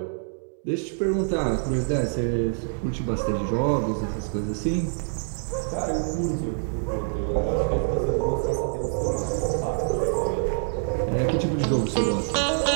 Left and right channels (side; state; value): left; silent; digital silence